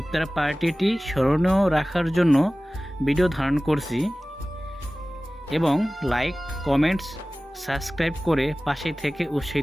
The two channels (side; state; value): both; normal; correlation 0.97